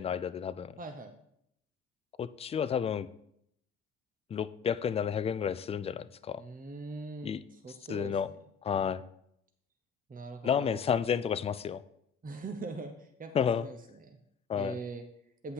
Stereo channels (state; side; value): quieter; right; 6.4 dB